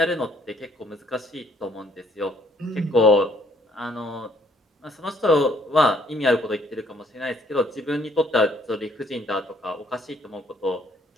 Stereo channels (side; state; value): both; normal; correlation 0.64